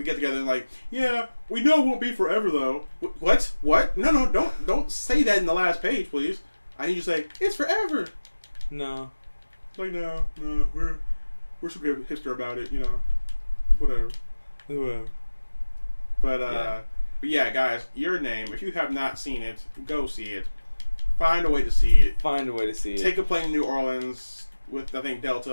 get together and like, yeah, we know it won't be forever though. What? No, don't say that in the last page, please. I need you to say it's forever. No. Like no, we're super hipster about it, you know. Whatever. But yeah, guys, Your Name. If you have not seen it, go see it. Find a way to see it. Take a plane to New Orleans with, I think,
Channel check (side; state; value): both; inverted; correlation -1.00